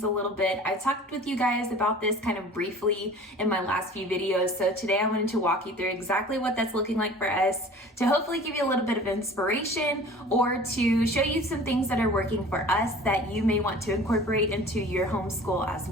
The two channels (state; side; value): normal; both; correlation 0.44